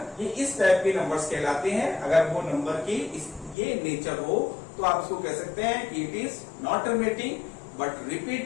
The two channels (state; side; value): drops out; right; at 3.6 s